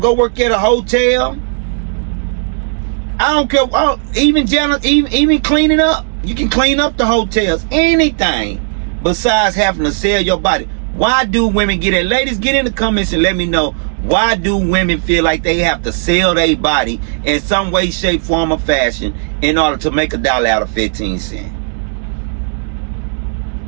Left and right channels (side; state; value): left; silent; digital silence